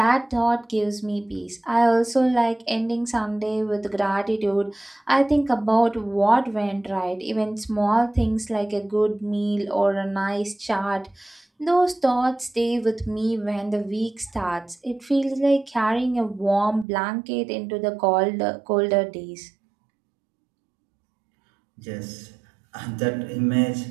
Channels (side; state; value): left; drops out; at 16.9 s